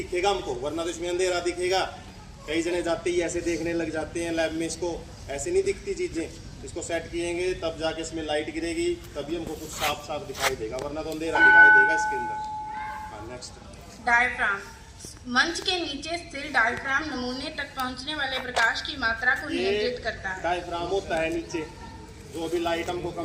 हमको, वरना तो इसमें अंधेरा दिखेगा। कई जने जाते ही ऐसे देखने लग जाते हैं लैब में, इसको ऐसे नहीं दिखती चीज़ें, इसको सेट किएंगे तब जाके इसमें लाइट गिरेगी, तभी हमको कुछ साफ साफ दिखाई देगा, वरना तो अंधेरा दिखाई देगा इसके अंदर। हाँ नेक्स्ट। डायफ्राम, मंच के नीचे स्थिर डायफ्राम नमूने तक पहुंचने वाले प्रकाश की मात्रा को नियंत्रित करता है। डायफ्राम होता है नीचे, जो भी लाइट हमको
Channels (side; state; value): both; identical; correlation 1.00